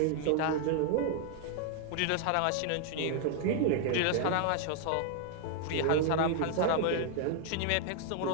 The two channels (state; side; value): different; both; correlation 0.00